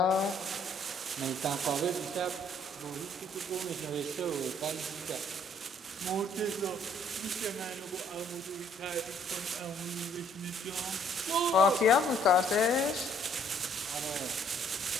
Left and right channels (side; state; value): both; normal; correlation 0.62